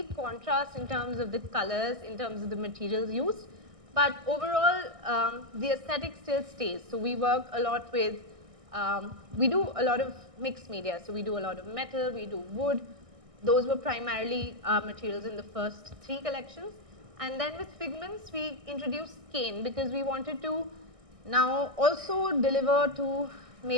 contrast in terms of the colors, in terms of the materials used, but overall the aesthetic still stays. So we work a lot with, we do a lot of mixed media. So we do a lot of metal, we do wood. Those were primarily materials in the first 3 collections. And then with Figments, we introduced cane because we wanted to now also deliver to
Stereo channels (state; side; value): late; left; 1.6 ms